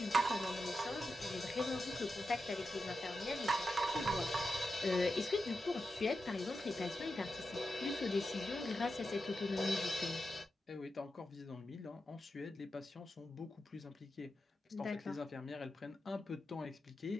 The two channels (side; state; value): both; normal; correlation 0.89